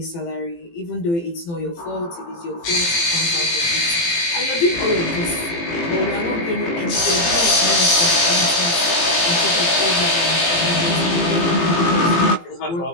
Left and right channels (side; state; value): right; late; 18 ms